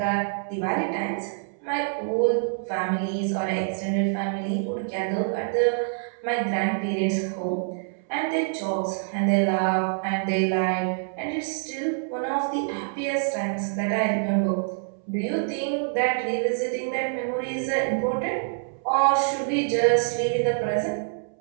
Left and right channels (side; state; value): left; silent; 61 dB below the other